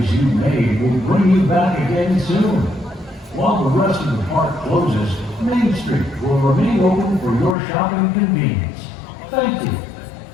you made will bring you back again soon. While the rest of the park closes, Main Street will remain open for your shopping convenience. Thank you.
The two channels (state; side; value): drops out; right; at 7.6 s